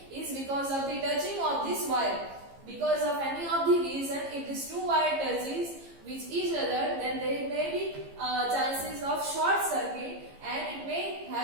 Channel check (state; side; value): late; left; 15 ms